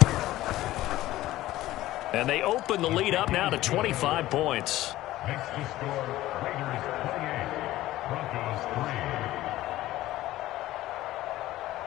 And they open the lead up now to 25 points. Makes the score Raiders 28, Broncos 3.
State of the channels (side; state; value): right; quieter; 15.8 dB